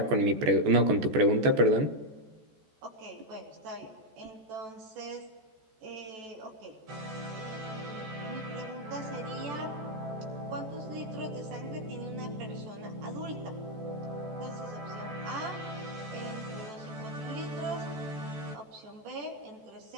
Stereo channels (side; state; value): left; late; 14 ms